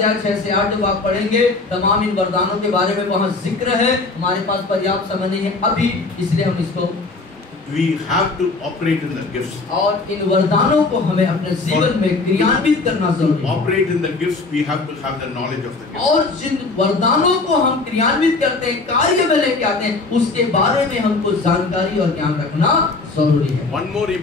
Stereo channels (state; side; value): quieter; right; 3.6 dB